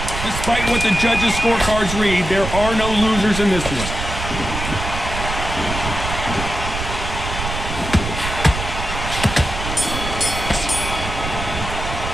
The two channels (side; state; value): right; noise; rumble, 6 dB below the sound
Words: Despite what the judges' scorecards read, there are no losers in this one.